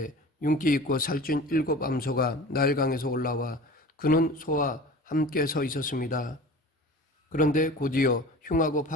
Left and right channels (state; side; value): normal; both; correlation 0.38